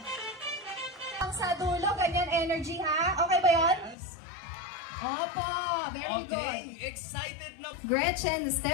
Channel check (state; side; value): drops out; right; at 4.0 s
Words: Ang sa dulo, ganyan energy ha? Okay ba yun? Opo, very good. Excited na. Gretchen,